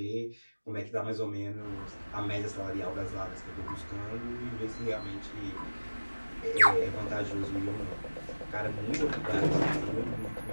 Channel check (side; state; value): both; inverted; correlation -1.00